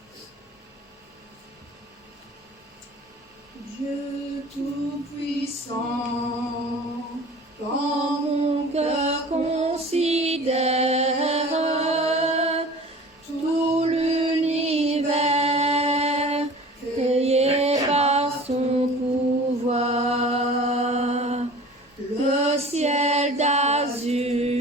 Dieu Tout-Puissant, Quand mon cœur considère tout l'univers créé par son pouvoir, le ciel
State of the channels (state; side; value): normal; both; correlation 0.42